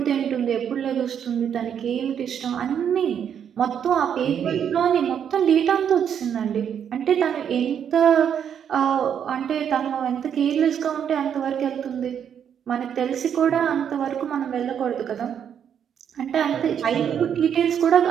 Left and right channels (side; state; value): left; quieter; 8.4 dB